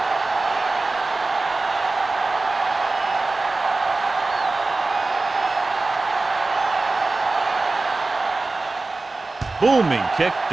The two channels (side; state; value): left; quieter; 3.4 dB